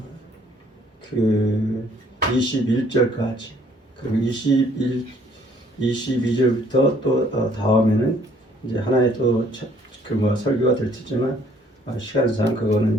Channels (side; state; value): both; normal; correlation 0.61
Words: 그 21절까지 그리고 22절부터 또 다음에는 이제 하나의 또 설교가 될 테지만 시간상 그거는